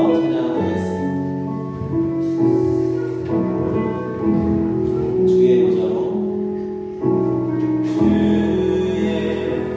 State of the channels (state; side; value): identical; both; correlation 1.00